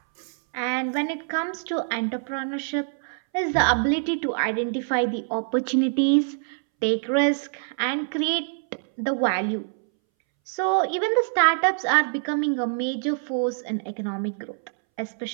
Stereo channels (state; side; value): silent; left; 62 dB below the other